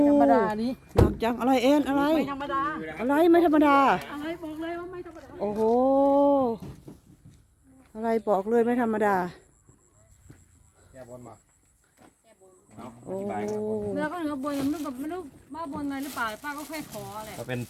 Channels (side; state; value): both; identical; correlation 1.00